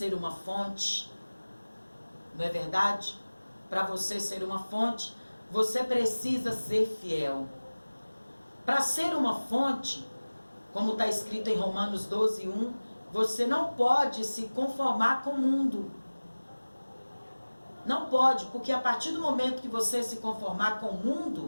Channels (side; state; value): both; inverted; correlation -1.00